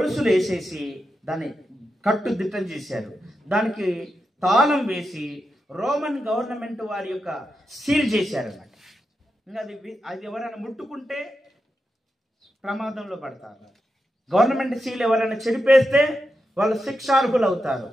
వేసేసి దాన్ని కట్టుదిట్టం చేశారు. దానికి తాళం వేసి రోమన్ గవర్నమెంట్ వారి యొక్క సీల్ చేశారన్నమాట. ఇంకా అది ఎవరైనా ముట్టుకుంటే ప్రమాదంలో పడతారు. గవర్నమెంట్ సీల్ ఎవరైనా చెడిపేస్తే వాళ్ళు శిక్షార్హులు అవుతారు,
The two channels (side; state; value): both; normal; correlation 0.87